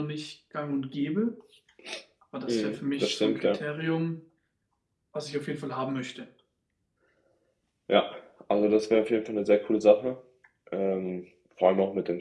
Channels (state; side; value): identical; both; correlation 1.00